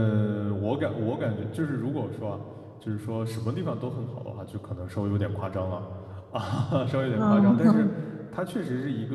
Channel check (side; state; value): both; identical; correlation 1.00